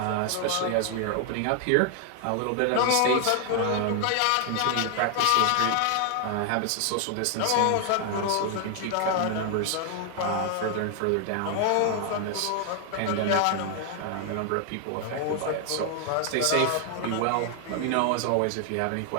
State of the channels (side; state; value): both; different; correlation 0.00